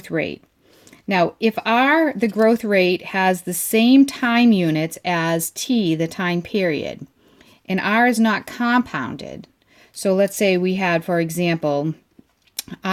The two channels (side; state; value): both; identical; correlation 1.00